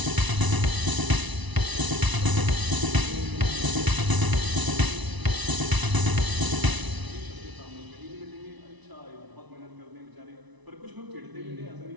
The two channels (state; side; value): late; left; 1.0 ms